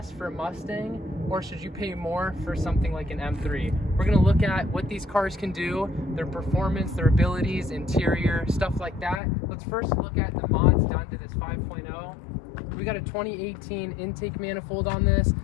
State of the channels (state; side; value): drops out; right; at 9.2 s